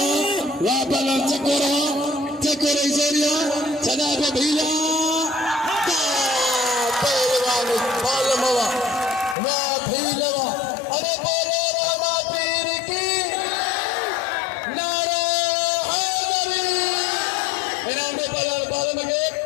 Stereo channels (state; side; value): drops out; right; at 9.3 s